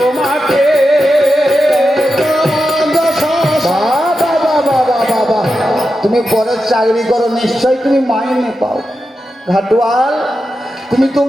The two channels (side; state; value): both; normal; correlation 0.90